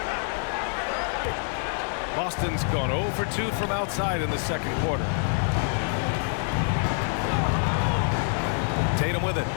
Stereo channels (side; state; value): right; silent; 56 dB below the other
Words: Boston's gone 0 for 2 from outside in the second quarter. Tatum with it.